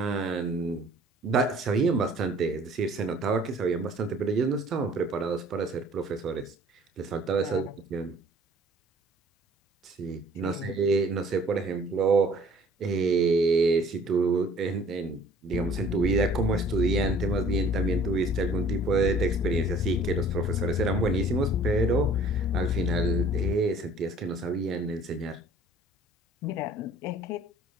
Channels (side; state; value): both; normal; correlation 0.53